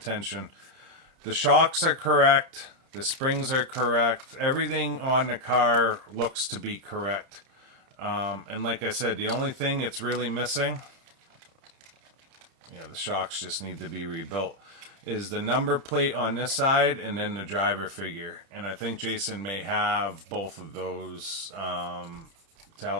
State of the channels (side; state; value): left; late; 30 ms